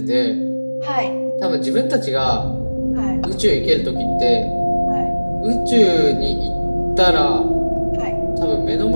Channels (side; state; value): both; inverted; correlation -1.00